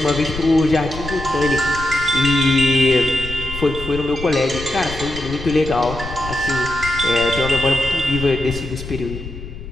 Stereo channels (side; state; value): left; noise; rumble, 11 dB below the sound